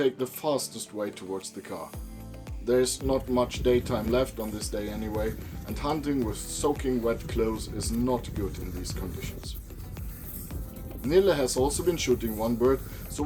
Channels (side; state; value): both; identical; correlation 1.00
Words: the fastest way towards the car. There's not much daytime left on this day anyway, and hunting with soaking wet clothes is not good in these conditions. Nille has also been shooting one bird, so